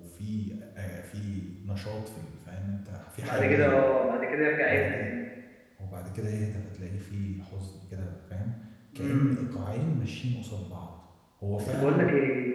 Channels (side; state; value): both; identical; correlation 1.00